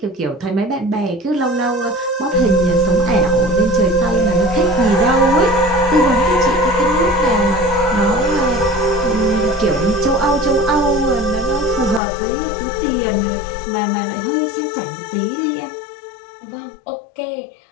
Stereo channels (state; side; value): drops out; right; at 12.0 s